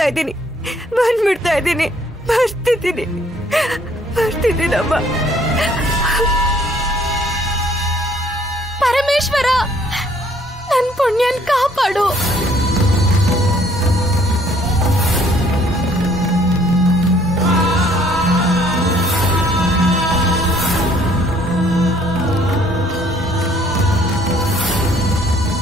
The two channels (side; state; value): both; normal; correlation 0.61